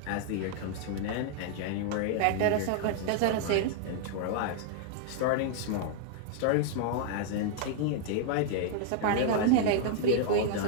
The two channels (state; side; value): different; both; correlation -0.01